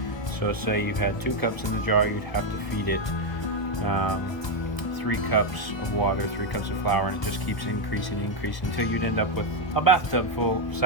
So say you had 2 cups in the jar, you'd have to feed it 3 cups of water, 3 cups of flour, and it just keeps increasing until you'd end up with a bathtub full of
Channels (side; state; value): right; late; 1.2 ms